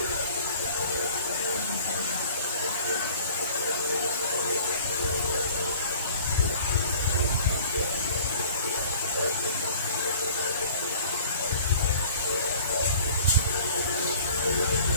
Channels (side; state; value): both; inverted; correlation -0.48